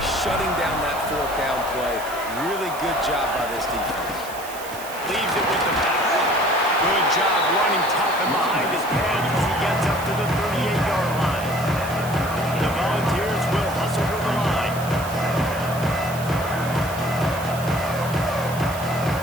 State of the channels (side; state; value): right; noise; hiss, 14 dB below the sound